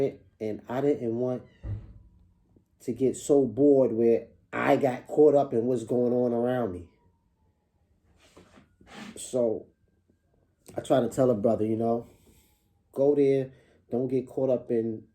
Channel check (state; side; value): identical; both; correlation 1.00